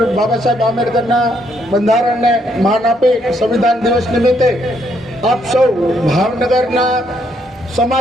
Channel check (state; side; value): normal; both; correlation 0.72